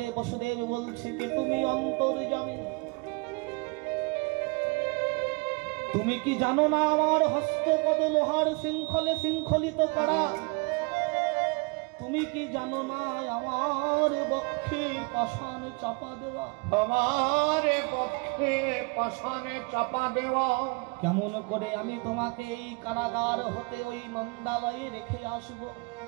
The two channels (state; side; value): quieter; left; 30.3 dB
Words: বসুদেব বলছে, কে তুমি অন্তর্যামী? তুমি কি জানো না আমার হস্তপদ লোহার শৃঙ্খলে শৃঙ্খলিত করা? তুমি কি জানো না আমার বক্ষে পাষাণ চাপা দেওয়া? আমার পক্ষে পাষাণে চাপা দেওয়া। কেমন করে আমি তোমাকে এই কারাগার হতে ওই নন্দালয়ে রেখে আসব?